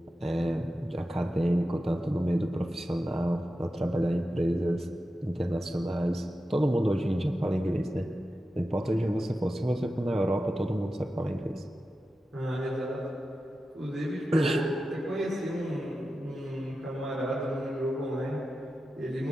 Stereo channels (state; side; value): normal; both; correlation 0.92